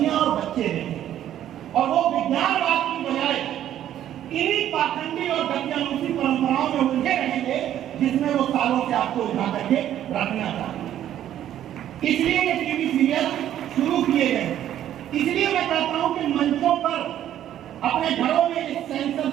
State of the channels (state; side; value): quieter; left; 11.4 dB